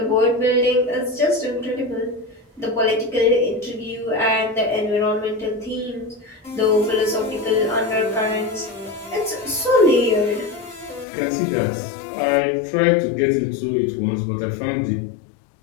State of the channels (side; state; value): right; drops out; at 11.1 s